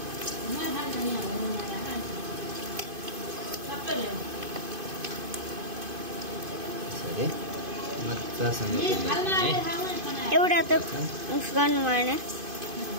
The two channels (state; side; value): late; left; 2.5 ms